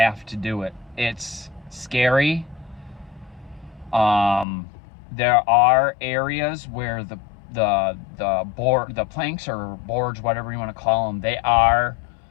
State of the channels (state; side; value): drops out; right; at 4.5 s